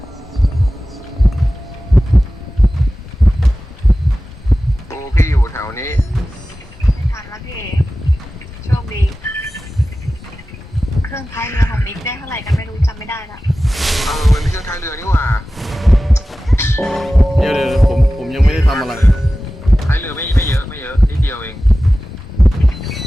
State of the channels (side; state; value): both; normal; correlation 0.95